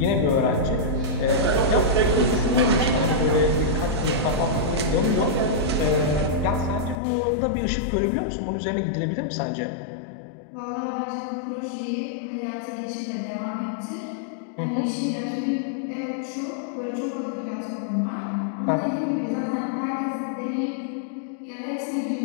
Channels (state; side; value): drops out; right; at 7.0 s